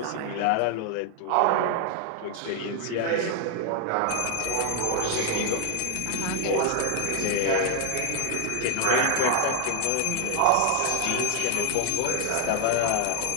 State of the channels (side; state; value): both; different; correlation 0.00